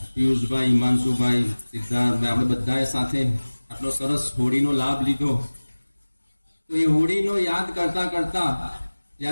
પિયુષભાઈ, હિમાંશુભાઈ, સિદ્ધાર્થભાઈ, આપણે બધાએ સાથે આટલો સરસ હોળીનો લાભ લીધો. તો એ હોળીનો યાદ કરતા કરતા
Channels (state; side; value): inverted; both; correlation -1.00